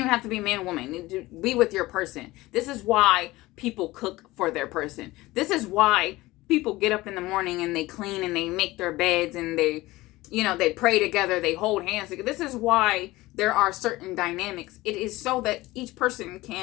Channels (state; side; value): quieter; right; 19.1 dB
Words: have to be man or woman. Be with your person. This is why people cook for their person. This is why people get up in the morning and they clean and they make their beds and they pray together, they hold hands together. This is why there are certain dynamics. It is so that each person